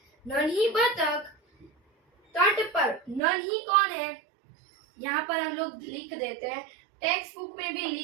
नन्ही बतख तट पर। नन्ही कौन है? यहाँ पर हम लोग लिख देते हैं, टेक्स्ट बुक में भी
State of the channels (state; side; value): drops out; left; at 3.2 s